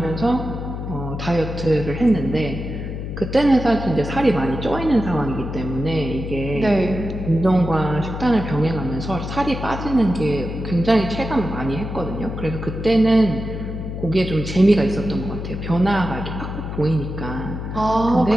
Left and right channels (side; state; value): left; noise; hum, 6 dB below the sound